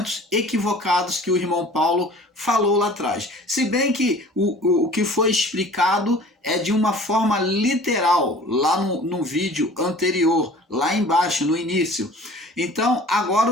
equivocados que o irmão Paulo falou lá atrás. Se bem que o que foi explicado é de uma forma literal, lá no vídeo anterior, lá embaixo, no início. Então, agora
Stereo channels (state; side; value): normal; both; correlation 0.46